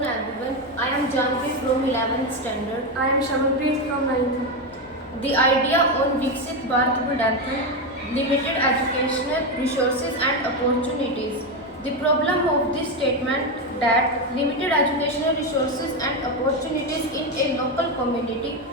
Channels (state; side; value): noise; left; hum, 29 dB below the sound